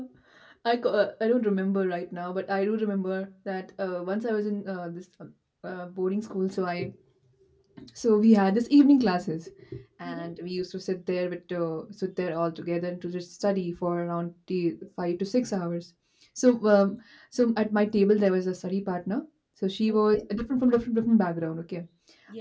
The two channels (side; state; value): both; identical; correlation 1.00